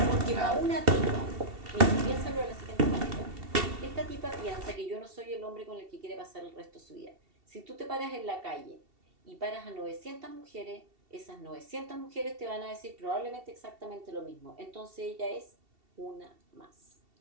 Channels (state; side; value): late; left; 2.7 ms